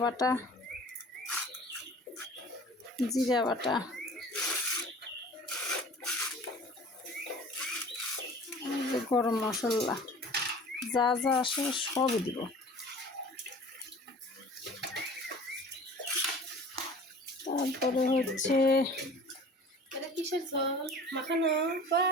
বাটা, জিরা বাটা, এই যে গরম মশলা, যা যা আসে সবই দিব। তারপরে হচ্ছে এটা কিসের ঝোল মাখানো?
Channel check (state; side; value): normal; both; correlation 0.44